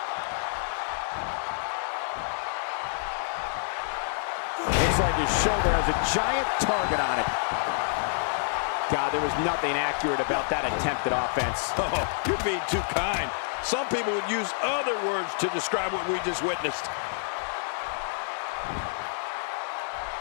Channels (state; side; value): silent; right; 59 dB below the other